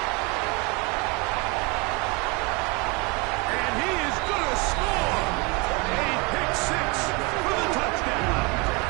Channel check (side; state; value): left; quieter; 28.4 dB